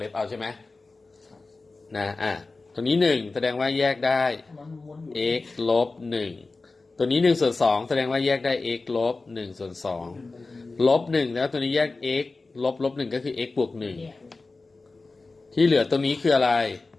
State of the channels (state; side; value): quieter; right; 3.6 dB